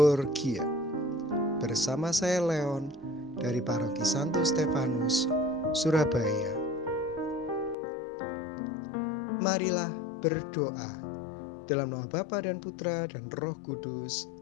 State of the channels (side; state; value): right; drops out; at 7.8 s